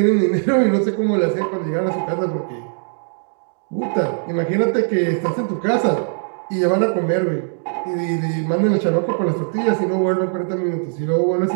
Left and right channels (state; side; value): silent; left; digital silence